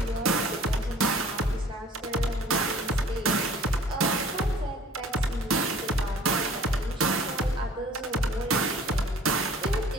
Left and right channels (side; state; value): both; normal; correlation 0.50